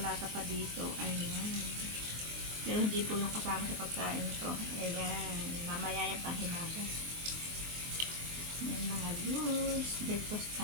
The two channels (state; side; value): late; left; 23 ms